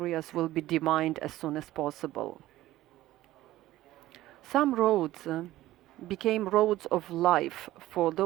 will be demined as soon as possible. Some roads became roads of life for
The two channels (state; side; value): quieter; left; 15.6 dB